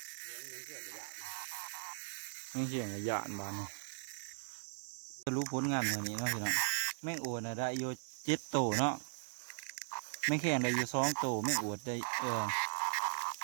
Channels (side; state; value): left; silent; digital silence